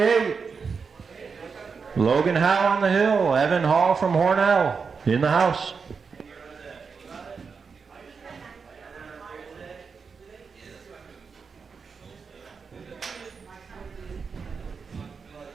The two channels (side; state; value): left; quieter; 5.4 dB